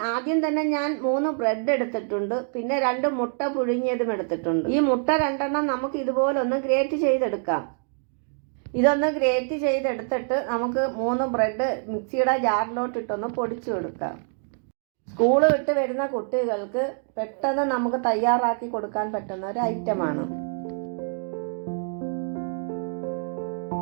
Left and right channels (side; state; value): left; silent; 61 dB below the other